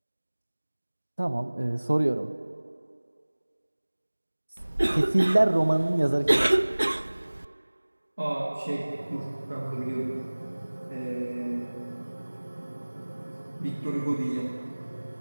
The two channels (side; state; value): both; inverted; correlation -1.00